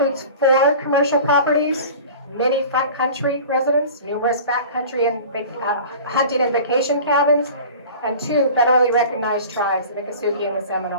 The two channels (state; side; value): inverted; both; correlation -0.39